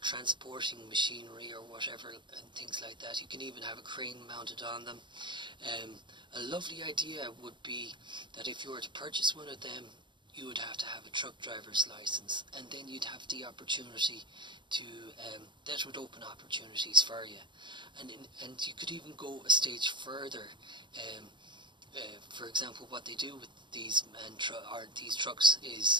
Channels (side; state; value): left; late; 0.23 ms